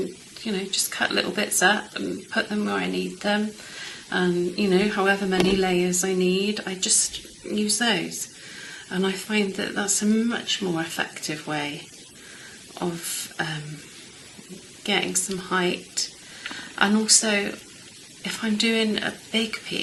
just cut little bits up and put them where I need them, and however many layers I need, I just use those, and I find that that's a much more effective way of getting some height. And also, if I'm doing a big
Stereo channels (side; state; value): both; identical; correlation 1.00